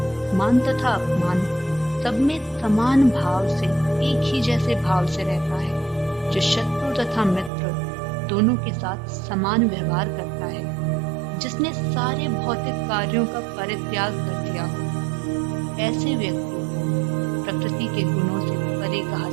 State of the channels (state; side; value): drops out; left; at 7.5 s